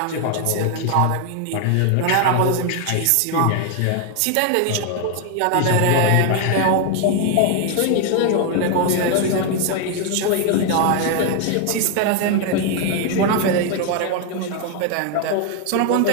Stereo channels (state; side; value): different; both; correlation 0.01